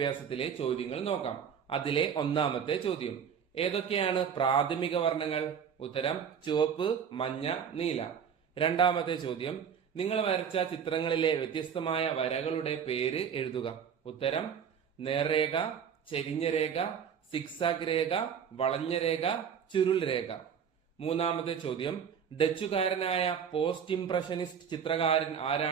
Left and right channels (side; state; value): left; quieter; 7.5 dB